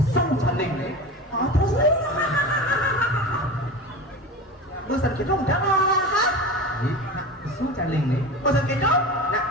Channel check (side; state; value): both; normal; correlation 0.30